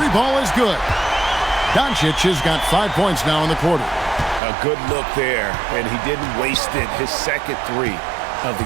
ball is good. Doncic has got 5 points now in the quarter. A good look there, and he didn't waste it. His second three of the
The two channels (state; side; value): drops out; left; at 4.4 s